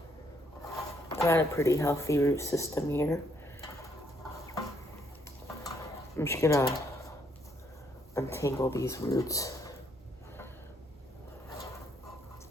Got a pretty healthy root system here. I'm just gonna untangle these roots.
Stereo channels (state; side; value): noise; right; hum, 27 dB below the sound